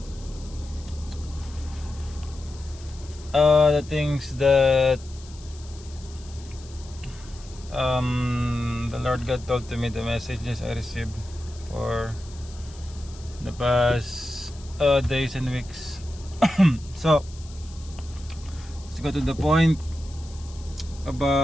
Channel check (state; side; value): noise; left; hiss, 21 dB below the sound